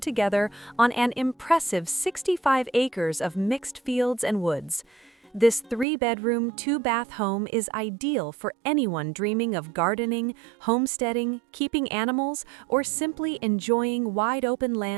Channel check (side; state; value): left; drops out; at 5.9 s